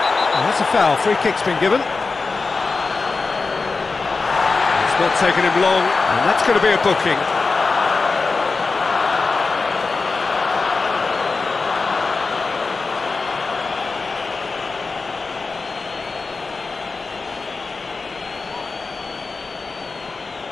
Oh, that's a foul, free kick's been given. Not taking him long, and that's going to be a booking.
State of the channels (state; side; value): quieter; right; 4.1 dB